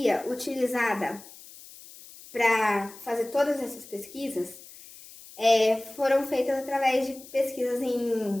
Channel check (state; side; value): noise; left; hiss, 19 dB below the sound